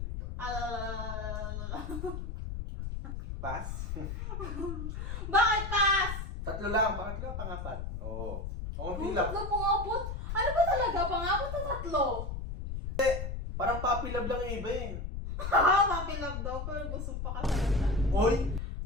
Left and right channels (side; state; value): left; noise; rumble, 5 dB below the sound